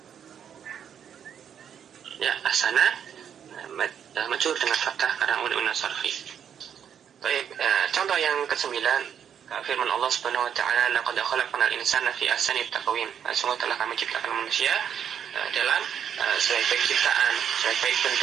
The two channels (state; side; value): quieter; left; 8.5 dB